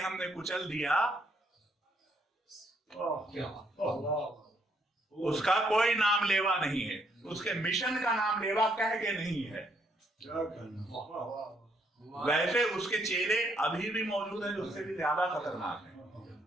कुचल दिया, उसका कोई नाम लेवा नहीं है, उसके मिशन का नाम लेवा कह के नहीं है। वैसे उसके चेहरे अभी भी मौजूद है जो उससे भी ज्यादा खतरनाक है,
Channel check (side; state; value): both; normal; correlation 0.72